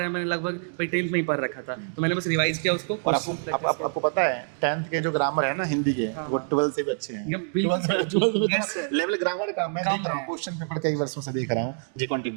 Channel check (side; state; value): left; silent; digital silence